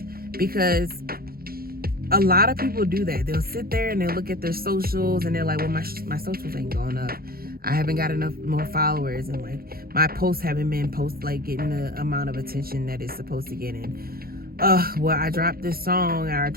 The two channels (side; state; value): left; late; 0.44 ms